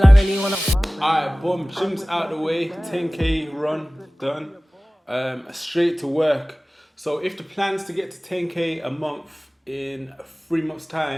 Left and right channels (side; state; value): both; normal; correlation 0.98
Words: I really wanna... Alright, boom, gym's out the way, 10K run done. Straight to work. So if the plan's to get to 10K a month in 3 months'